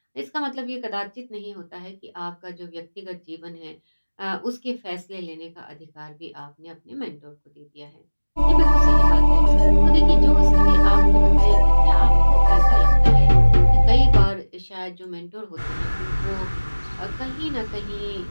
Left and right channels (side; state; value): both; inverted; correlation -1.00